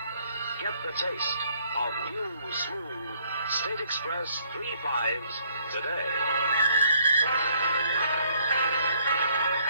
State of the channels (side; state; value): both; inverted; correlation -0.66